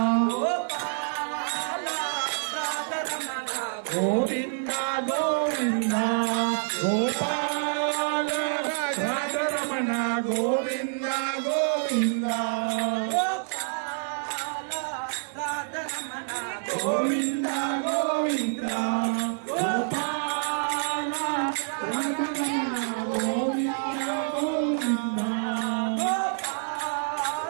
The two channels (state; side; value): silent; left; digital silence